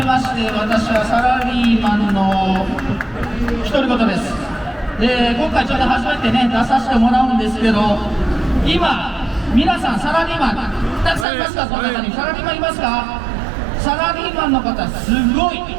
まして、私はサラリーマンの独り言です。今回ちょっと初めてね、出させてもらうんですけど、今、皆さんサラリーマン、たくさんいますか、この中に。サラリーマンいますか。サラリーマンの方、すごい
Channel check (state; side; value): drops out; left; at 11.2 s